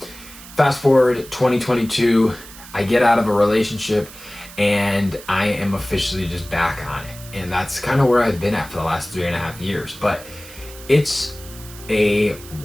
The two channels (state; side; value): noise; right; hiss, 17 dB below the sound